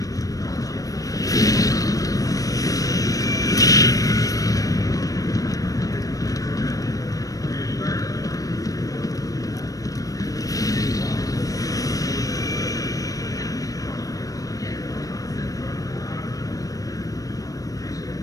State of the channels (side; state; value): right; late; 0.17 ms